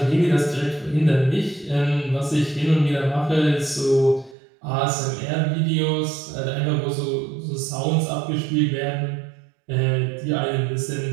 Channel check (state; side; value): drops out; left; at 4.4 s